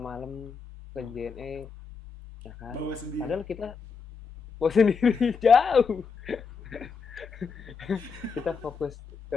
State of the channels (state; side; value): quieter; right; 5.5 dB